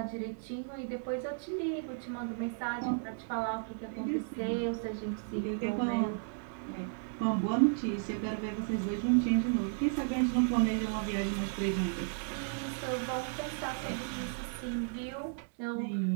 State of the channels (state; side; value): silent; left; digital silence